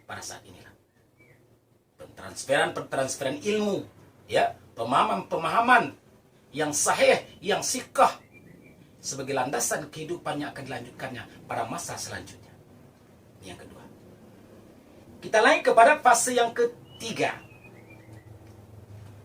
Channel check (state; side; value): identical; both; correlation 1.00